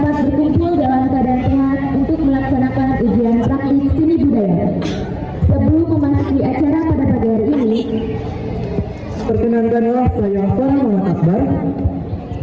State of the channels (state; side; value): identical; both; correlation 1.00